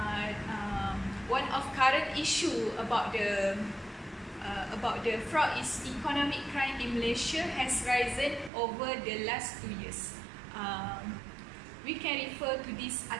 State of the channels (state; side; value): drops out; left; at 8.5 s